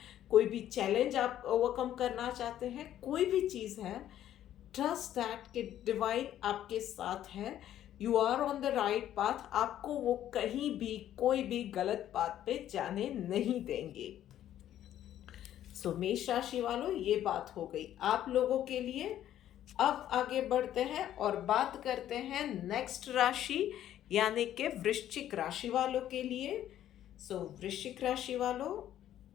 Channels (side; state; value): right; quieter; 11.7 dB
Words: कोई भी चैलेंज आप ओवरकम करना चाहते हैं, कोई भी चीज़ है, ट्रस्ट दैट कि डिवाइन आपके साथ है। You are on the right path. आपको वो कहीं भी कोई भी गलत पाथ पे जाने नहीं देंगे। सो मेष राशि वालों, ये बात हो गई आप लोगों के लिए। अब आगे बढ़ते हैं और बात करते हैं नेक्स्ट राशि यानी कि वृश्चिक राशि वालों के लिए। सो वृश्चिक राशि वालों,